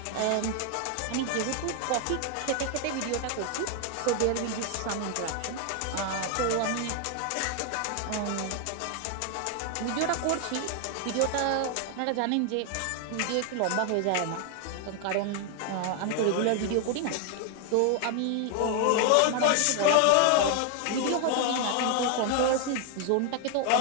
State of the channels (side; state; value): both; different; correlation 0.00